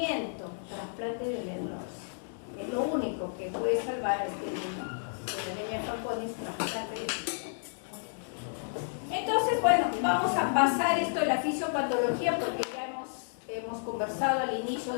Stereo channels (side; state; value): right; silent; digital silence